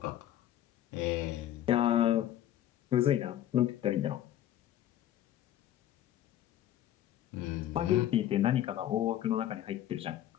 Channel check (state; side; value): quieter; right; 12.1 dB